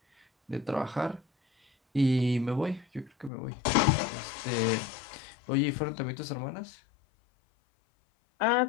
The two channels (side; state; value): right; drops out; at 3.3 s